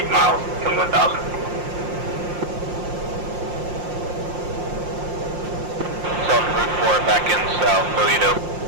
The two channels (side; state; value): left; late; 5.7 ms